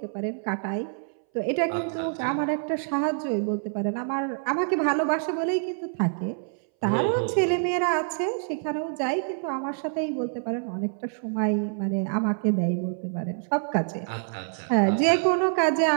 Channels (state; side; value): silent; left; 60 dB below the other